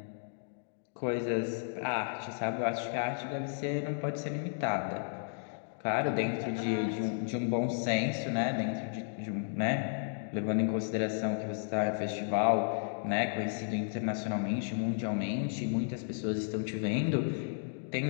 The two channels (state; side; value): silent; right; digital silence